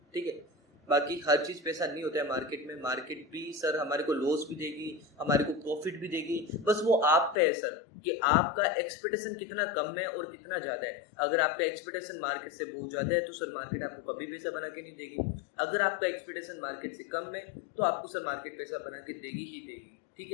ठीक है। बाकी हर चीज़ पैसा नहीं होता है मार्केट में, मार्केट भी सर हमारे को लॉस भी देगी, हमारे को प्रॉफिट भी देगी, बस वो आप पे है सर कि आपका एक्सपेक्टेशन कितना कम है और कितना ज़्यादा है। अगर आपका एक्सपेक्टेशन मार्केट से बहुत ज़्यादा है तो सर मार्केट आपको कभी पैसा बना के नहीं देगी, अगर आपका एक्सपेक्टेशन मार्केट से कम है तो आपको सर मार्केट पैसा बना के देगी ही देगी, ठीक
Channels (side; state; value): right; drops out; at 7.4 s